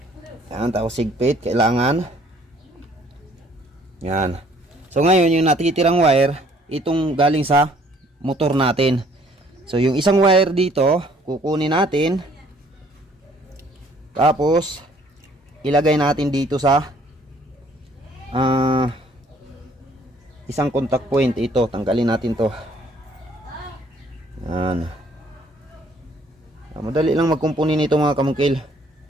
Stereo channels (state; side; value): normal; both; correlation 0.60